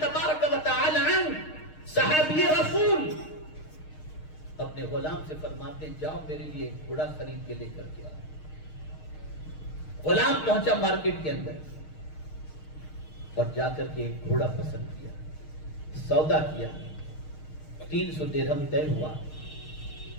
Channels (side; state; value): right; late; 6.5 ms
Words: و تعالی عنہ، صحابی رسول، اپنے غلام سے فرماتے ہیں جاؤ میرے لیے ایک گھوڑا خرید کے لے کر کے آؤ۔ غلام پہنچا مارکیٹ کے اندر اور جا کر کے ایک گھوڑا پسند کیا، سودا کیا، 300 درہم طے ہوا۔